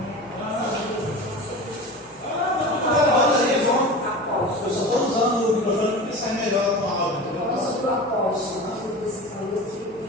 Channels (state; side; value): noise; right; hum, 29 dB below the sound